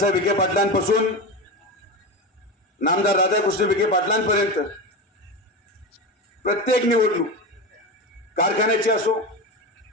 विखे पाटलांपासून नामदार राधाकृष्ण विखे पाटलांपर्यंत प्रत्येक निवडणूक कारखान्याची असो,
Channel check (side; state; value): both; normal; correlation 0.21